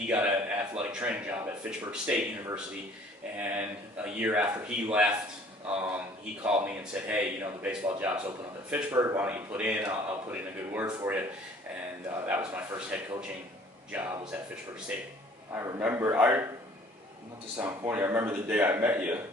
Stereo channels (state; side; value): normal; both; correlation 0.54